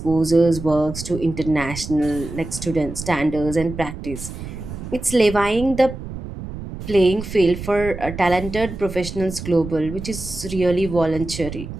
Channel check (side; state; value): right; noise; rumble, 10 dB below the sound